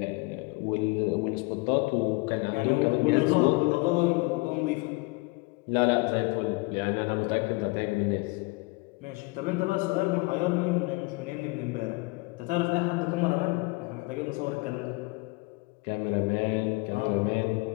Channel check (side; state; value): right; quieter; 25.4 dB